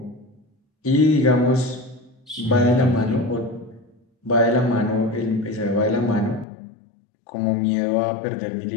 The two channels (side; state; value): right; drops out; at 6.5 s